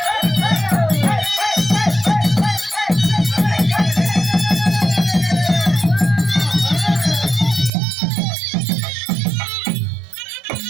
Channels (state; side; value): drops out; left; at 7.7 s